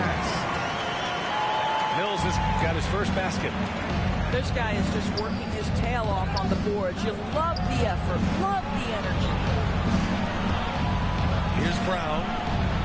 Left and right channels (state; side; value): identical; both; correlation 1.00